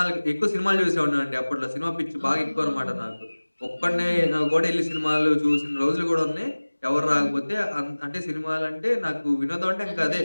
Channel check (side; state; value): both; inverted; correlation -1.00